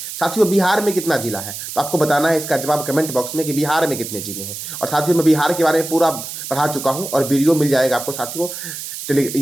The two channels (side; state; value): right; noise; hiss, 8 dB below the sound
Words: साथियों, बिहार में कितना जिला है? तो आपको बताना है इसका जवाब कमेंट बॉक्स में कि बिहार में कितने जिले हैं। और साथियों, मैं बिहार के बारे में पूरा पढ़ा चुका हूँ और वीडियो मिल जाएगा आपको साथियों